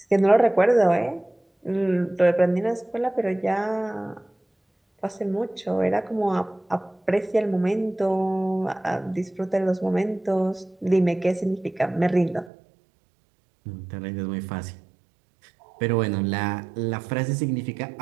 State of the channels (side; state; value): left; drops out; at 12.5 s